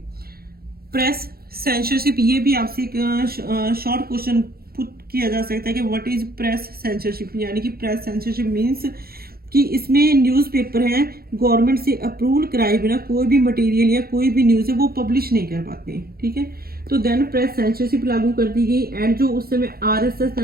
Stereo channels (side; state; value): left; late; 0.44 ms